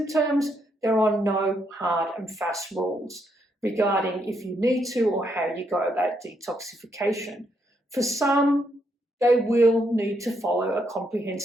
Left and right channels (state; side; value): normal; both; correlation 0.77